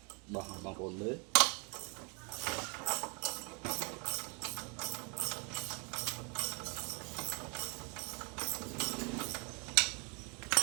bằng ôn mới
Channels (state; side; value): quieter; left; 32.9 dB